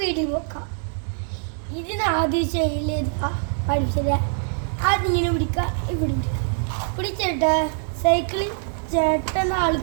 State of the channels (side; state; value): left; silent; digital silence